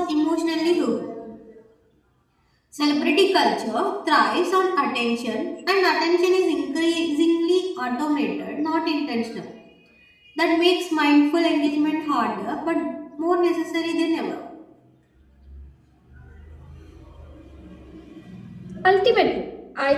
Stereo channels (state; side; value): identical; both; correlation 1.00